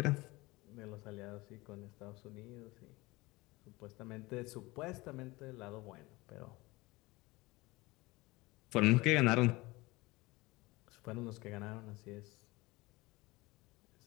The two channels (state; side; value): quieter; right; 21.8 dB